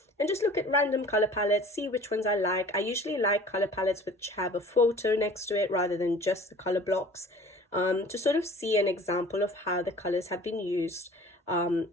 and just look at random color palettes, see which ones I like. I usually like color palettes which have a photo next to it rather than just the color blocks, to sort of see an example of how the colors have been used,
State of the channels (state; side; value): normal; both; correlation 0.47